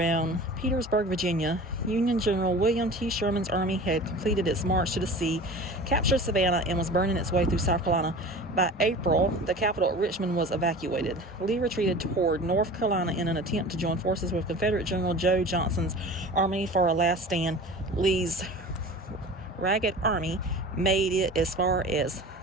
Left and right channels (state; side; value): normal; both; correlation 0.38